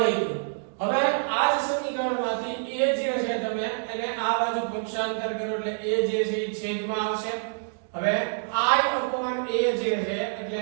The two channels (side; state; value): left; silent; digital silence